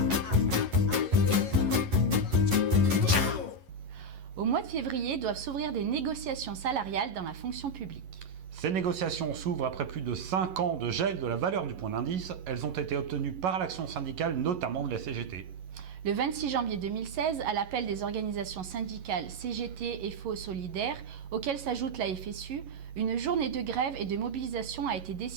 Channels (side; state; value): left; late; 11 ms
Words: Au mois de février doivent s'ouvrir des négociations salariales dans la fonction publique. Ces négociations s'ouvrent après plus de 5 ans de gel de la valeur du point d'indice. Elles ont été obtenues par l'action syndicale, notamment de la CGT. Le 26 janvier 2016, à l'appel des organisations syndicales CGT, FO, Solidaires, auxquelles s'ajoute la FSU, une journée de grève et de mobilisation a été